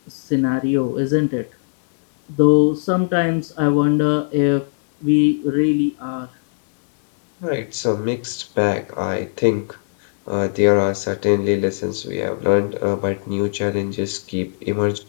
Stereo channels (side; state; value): right; silent; digital silence